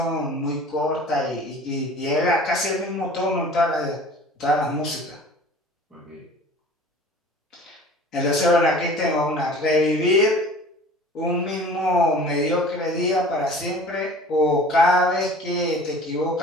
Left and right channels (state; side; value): normal; both; correlation 0.45